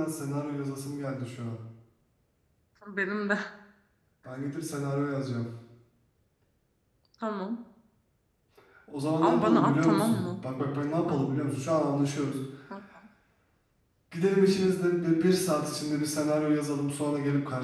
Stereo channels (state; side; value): identical; both; correlation 1.00